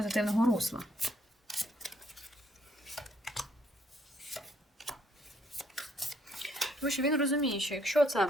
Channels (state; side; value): normal; both; correlation 0.69